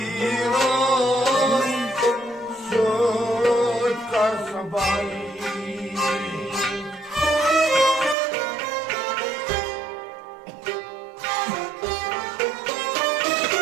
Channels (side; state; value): left; drops out; at 8.2 s